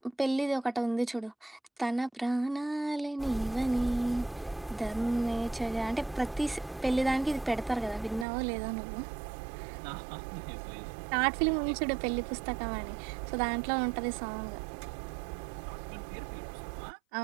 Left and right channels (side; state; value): left; drops out; at 8.2 s